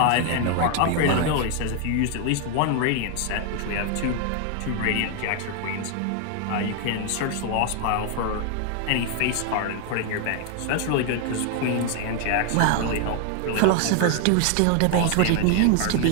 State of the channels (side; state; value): both; different; correlation 0.00